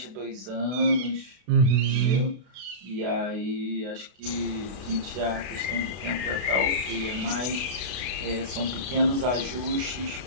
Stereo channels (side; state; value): left; late; 32 ms